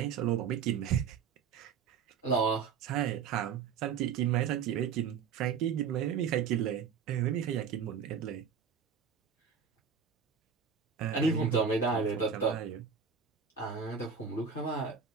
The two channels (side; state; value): left; quieter; 6.6 dB